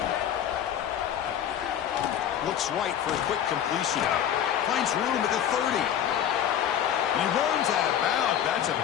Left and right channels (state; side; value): quieter; right; 9.8 dB